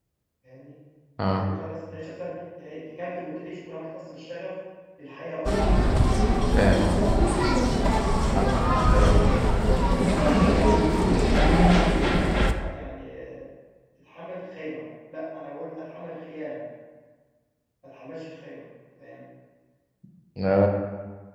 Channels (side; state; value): both; identical; correlation 1.00